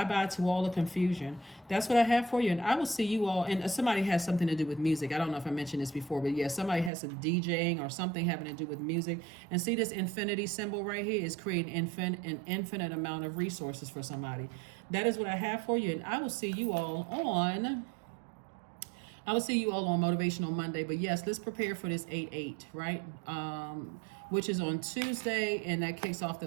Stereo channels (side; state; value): left; drops out; at 6.9 s